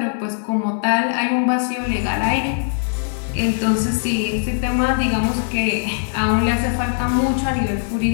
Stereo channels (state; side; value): silent; right; digital silence